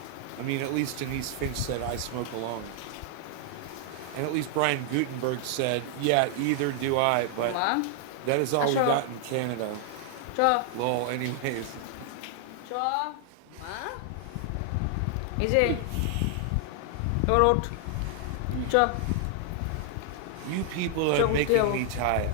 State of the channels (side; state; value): both; different; correlation 0.00